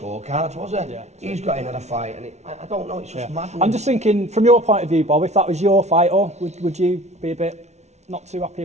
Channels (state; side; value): late; left; 0.32 ms